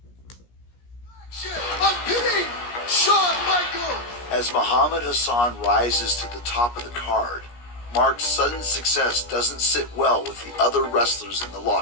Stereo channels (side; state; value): right; late; 17 ms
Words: I'm pitting Shawn Michaels As Muhammad Hassan rises to the top of the card, Mark's sudden success doesn't sit well with the other wrestlers in the